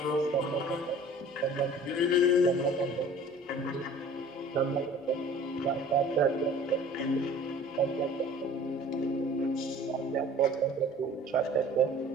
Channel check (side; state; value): both; normal; correlation 0.47